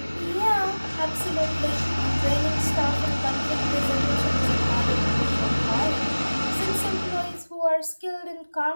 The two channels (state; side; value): inverted; both; correlation -1.00